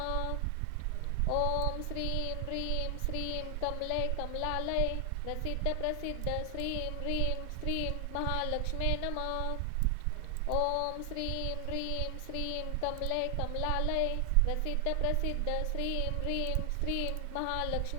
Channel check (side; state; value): both; different; correlation 0.00